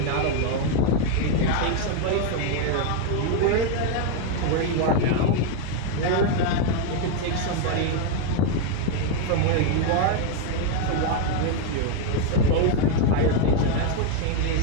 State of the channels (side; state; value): both; different; correlation 0.01